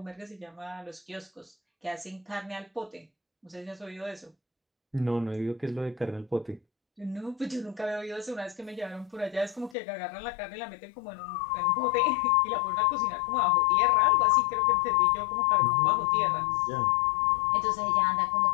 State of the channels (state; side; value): drops out; right; at 9.8 s